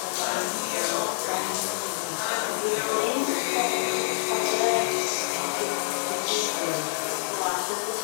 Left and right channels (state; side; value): silent; right; digital silence